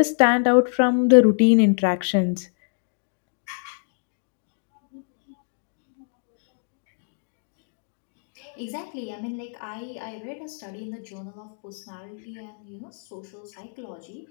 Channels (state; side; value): silent; right; 61 dB below the other